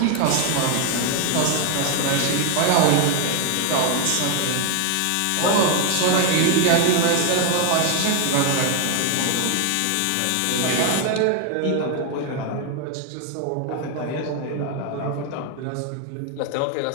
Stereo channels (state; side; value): different; both; correlation 0.00